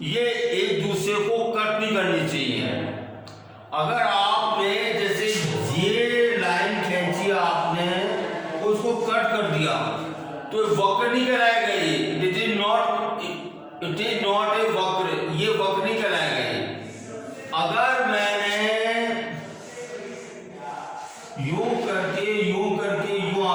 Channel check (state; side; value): identical; both; correlation 1.00